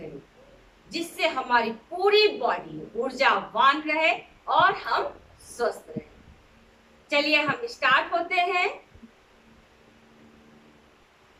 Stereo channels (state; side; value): identical; both; correlation 1.00